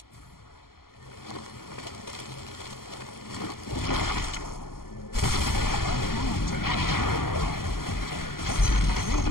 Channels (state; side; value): late; right; 0.92 ms